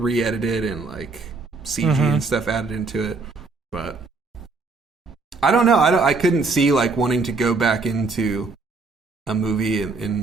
and like CG and stuff added into it. But I don't know. I couldn't see like wanting to go back into a movie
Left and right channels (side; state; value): left; quieter; 4.0 dB